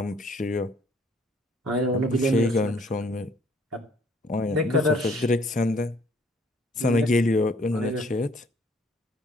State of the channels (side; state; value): both; normal; correlation 0.61